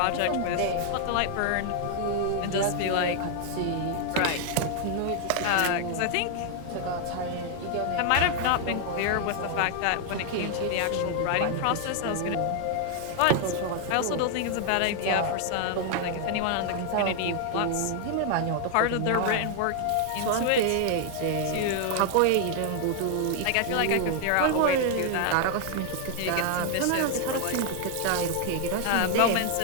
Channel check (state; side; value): different; both; correlation 0.00